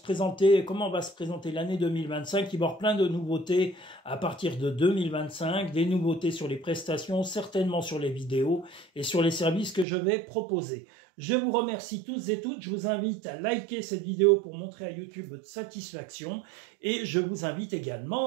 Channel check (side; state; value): left; drops out; at 9.9 s